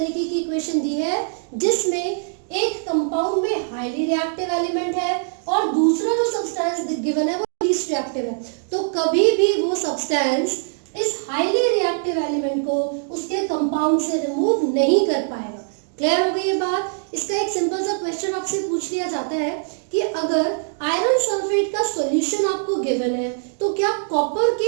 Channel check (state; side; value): silent; left; digital silence